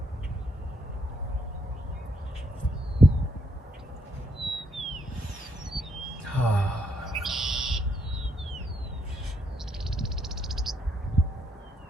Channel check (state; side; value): normal; both; correlation 0.75